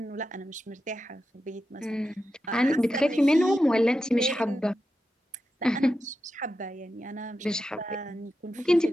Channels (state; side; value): normal; both; correlation 0.89